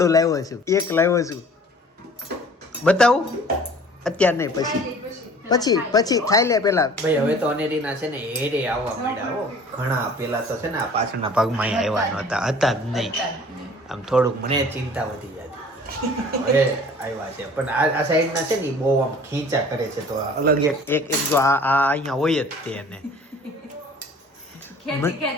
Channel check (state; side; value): normal; both; correlation 0.48